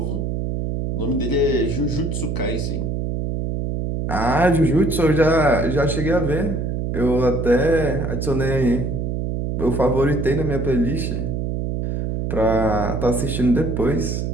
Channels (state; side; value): noise; right; hum, 2 dB below the sound